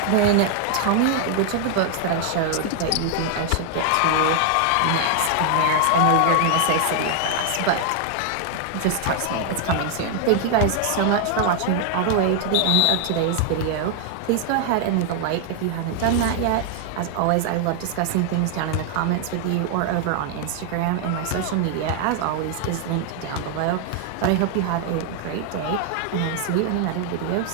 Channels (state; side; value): different; both; correlation 0.00